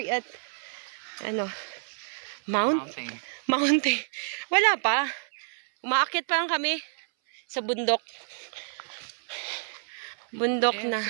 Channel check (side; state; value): left; silent; 58 dB below the other